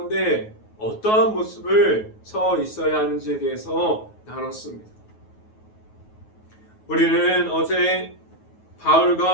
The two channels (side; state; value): right; late; 9.3 ms